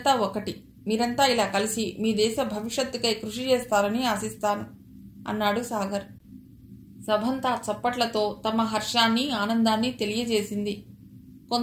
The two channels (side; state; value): both; identical; correlation 1.00